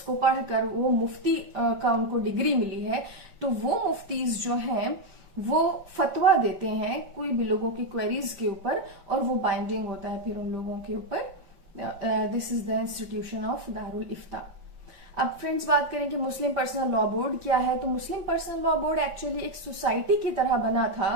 को पढ़कर वो मुफ्ती का उनको डिग्री मिली है। तो वो मुफ्तीज जो हैं वो फतवा देते हैं कोई भी लोगों की क्वेरीज के ऊपर, और वो बाइंडिंग होता है फिर उन लोगों के ऊपर। This is the institution of Darul Ifta. अब फ्रेंड्स बात करें कि मुस्लिम पर्सनल लॉ बोर्ड क्या है, तो मुस्लिम पर्सनल लॉ बोर्ड एक्चुअली एक सोसाइटी की तरह बना था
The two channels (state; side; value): late; left; 5.2 ms